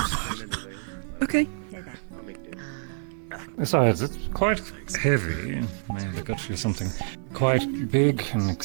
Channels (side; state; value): left; silent; digital silence